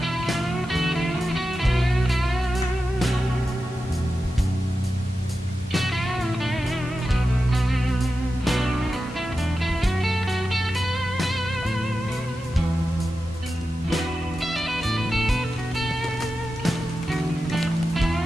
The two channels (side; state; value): both; normal; correlation 0.91